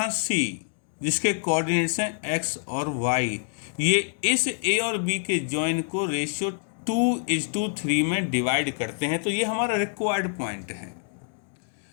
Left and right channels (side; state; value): right; silent; digital silence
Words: सी जिसके कोऑर्डिनेट्स हैं एक्स और वाई। ये इस ए और बी के जॉइन को रेशियो 2:3 में डिवाइड करते हैं। तो ये हमारा रिक्वायर्ड पॉइंट है।